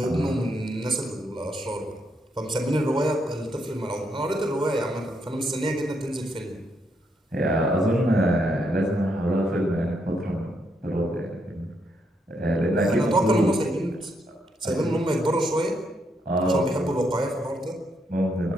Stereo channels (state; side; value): normal; both; correlation 0.77